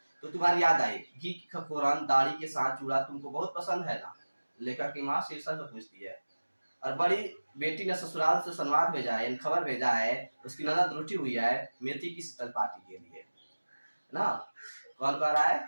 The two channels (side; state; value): both; inverted; correlation -1.00